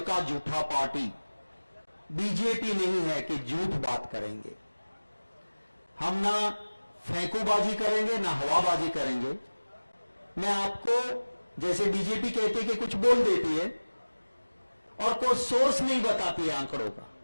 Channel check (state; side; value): inverted; both; correlation -1.00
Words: झूठा पार्टी बीजेपी नहीं है कि झूठ बात करेंगे। हम ना फेंकूबाजी करेंगे ना हवाबाजी करेंगे। मैं आपको, जैसे बीजेपी कहती है कि कुछ बोल देती है और कोई सोर्स नहीं बताती है आंकड़ों का,